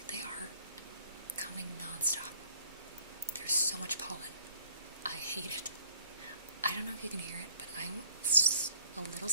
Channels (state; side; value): inverted; both; correlation -0.59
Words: They are coming non-stop. There's so much pollen. I hate it. I don't know if you can hear it, but I'm a little